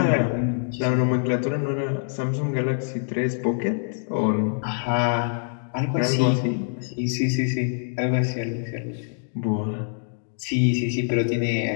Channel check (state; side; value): silent; right; digital silence